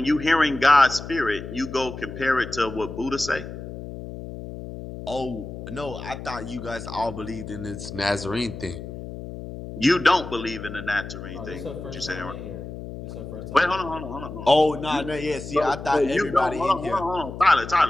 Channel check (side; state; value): left; noise; hum, 10 dB below the sound